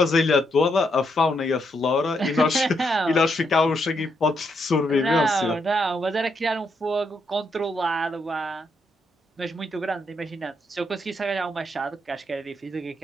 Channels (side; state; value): both; normal; correlation 0.78